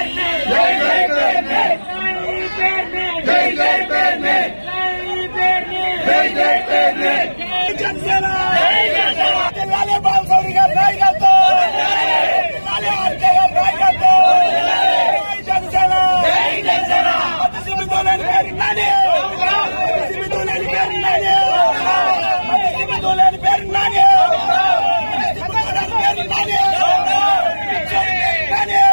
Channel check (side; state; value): both; inverted; correlation -1.00